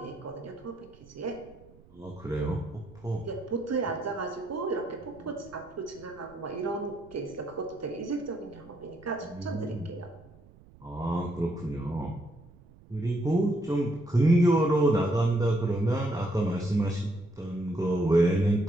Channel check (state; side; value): noise; right; rumble, 24 dB below the sound